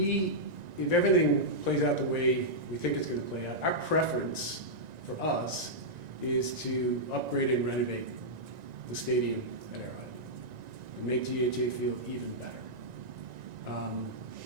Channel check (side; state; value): left; late; 1.9 ms